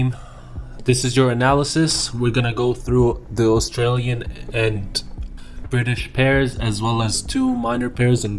this is your analysis. We're gonna go through the Australian and British pairs as well as two minor pairs in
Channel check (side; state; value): both; identical; correlation 1.00